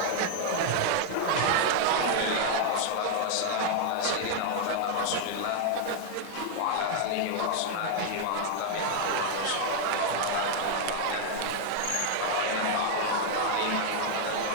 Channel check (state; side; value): different; both; correlation 0.00